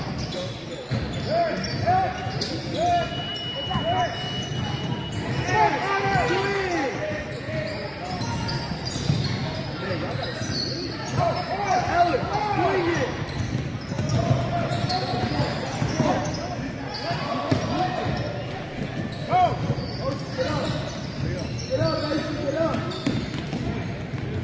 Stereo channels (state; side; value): identical; both; correlation 1.00